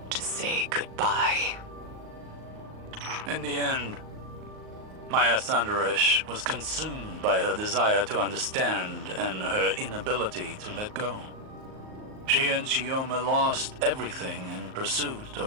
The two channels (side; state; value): left; late; 38 ms